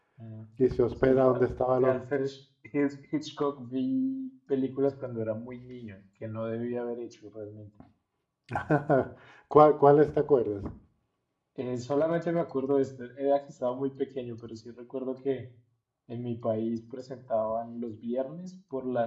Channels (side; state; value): both; identical; correlation 1.00